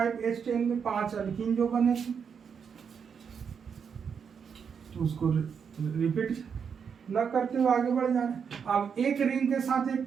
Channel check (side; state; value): left; quieter; 6.8 dB